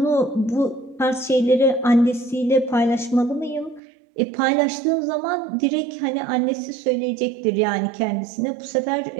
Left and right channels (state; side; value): drops out; left; at 3.8 s